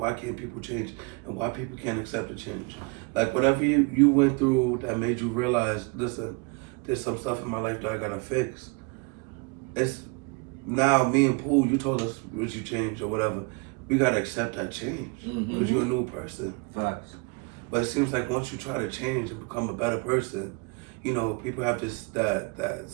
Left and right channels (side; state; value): left; quieter; 30.8 dB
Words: can't people change? And why people can't accept the change? Whatever you went through that made you realize, listen, there's some stuff in my life that I gotta fix. It's now me and Pooh, you told us what you changed or whatever. We gotta accept that change because you're a new person. Facts. But it seems like once you try to change and become a better person, people have that